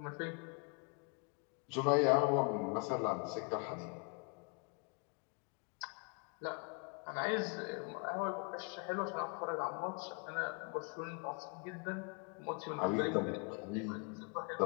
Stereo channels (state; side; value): quieter; right; 33.9 dB